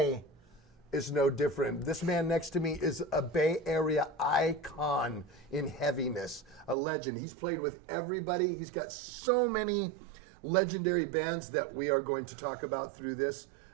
is no different. This man next to me is a Bay Area icon in heaviness, a legend. He's played with everybody. He's got so many legendary bands that we are going to talk about through this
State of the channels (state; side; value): drops out; left; at 6.8 s